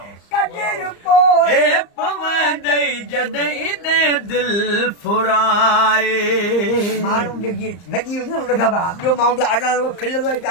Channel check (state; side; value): late; right; 34 ms